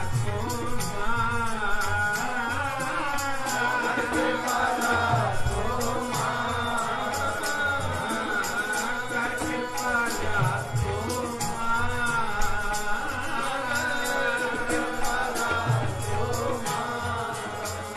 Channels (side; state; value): both; identical; correlation 1.00